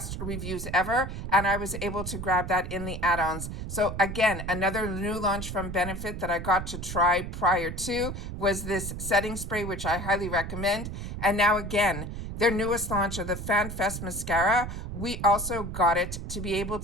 reviews ever, and I was able to grab that in the add-ons. So again, another new launch from Benefit that I got to try prior to was this setting spray, which I highly recommend. And now again, their newest launch of the Fan Fest mascara, we also got it to be able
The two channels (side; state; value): right; noise; rumble, 7 dB below the sound